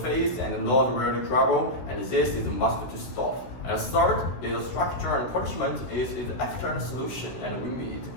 and not really trouble, and this is must to stop. And third is structure and punishment is the external solution and we need.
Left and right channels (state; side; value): late; right; 16 ms